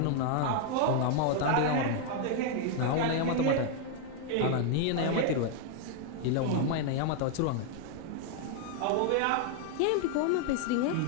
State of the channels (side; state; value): both; different; correlation 0.00